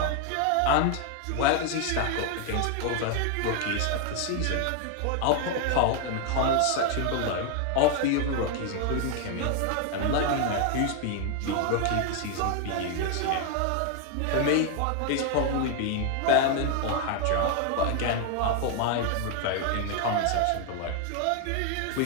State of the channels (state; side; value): different; both; correlation 0.00